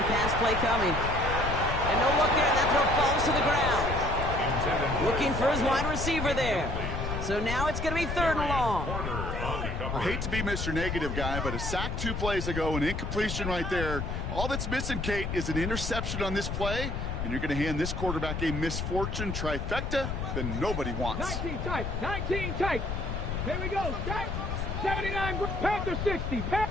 pass play coming. And no look there. That throw falls to the ground. Looking for his wide receiver there. So now it's going to be 3rd and long. I hate to be Mr. Negative guy, but a sack 2 plays ago, an incompletion right there. All that's missing, Kate, is an interception on this play, and you're going to hand this quarterback a misfortune trifecta that nobody wants. 19 tight, 19 tight. Here we go, tight. 79 Panther 60,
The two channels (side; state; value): left; noise; rumble, 3 dB below the sound